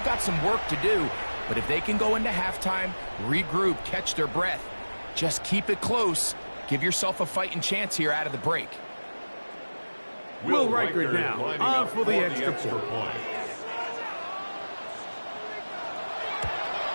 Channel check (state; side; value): inverted; both; correlation -1.00